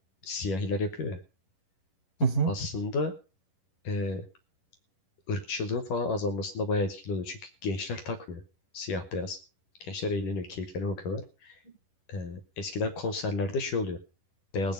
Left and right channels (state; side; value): late; right; 11 ms